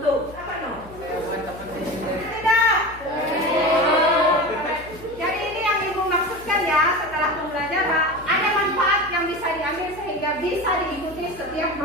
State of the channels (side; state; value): left; noise; hum, 19 dB below the sound